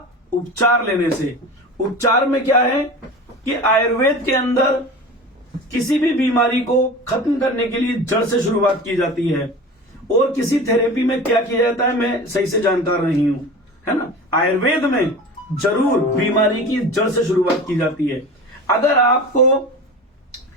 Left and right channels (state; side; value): normal; both; correlation 0.34